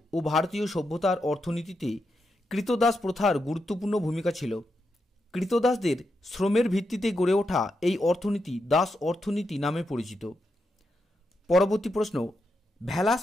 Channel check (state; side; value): normal; both; correlation 0.85